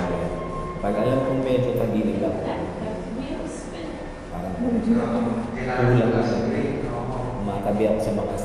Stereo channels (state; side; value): identical; both; correlation 1.00